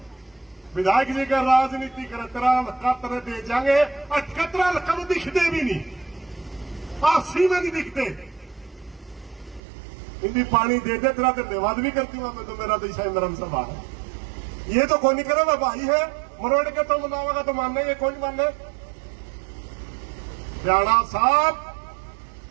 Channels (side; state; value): left; drops out; at 9.6 s